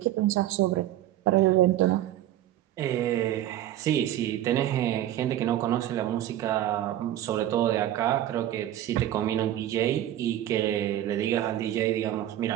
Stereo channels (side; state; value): left; quieter; 12.7 dB